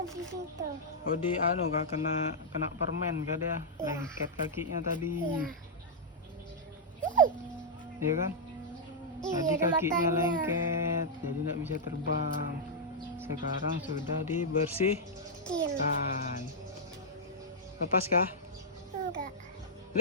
di situ. Oh, di kak kena permen kak dia. Iya. Lengket kakinya tadi. Iya. Iya kan? Iya, Tadi ada kakinya matanya. lengket, jadi nggak bisa terbang. Sekarang sudah dibersihkan. Lepas kah? Enggak.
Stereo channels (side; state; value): both; normal; correlation -0.07